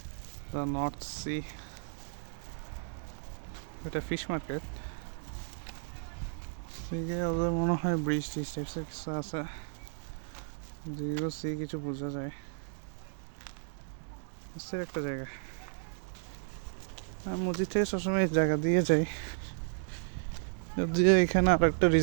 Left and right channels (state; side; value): silent; left; digital silence